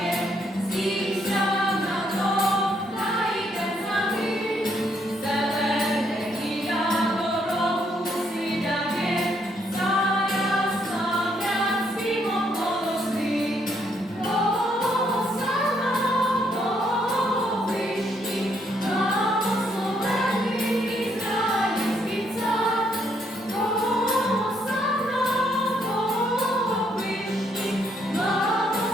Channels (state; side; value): normal; both; correlation 0.72